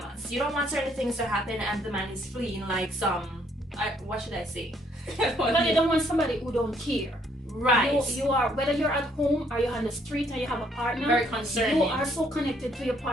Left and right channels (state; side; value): normal; both; correlation 0.67